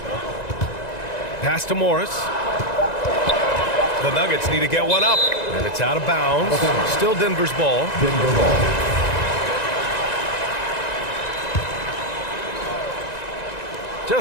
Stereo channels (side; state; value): right; late; 1.9 ms